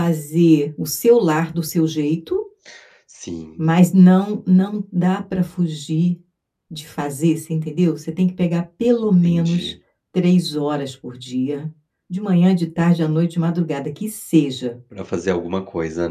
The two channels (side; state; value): both; identical; correlation 1.00